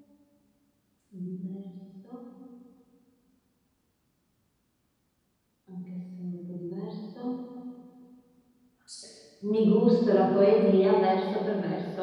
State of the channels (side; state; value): both; identical; correlation 1.00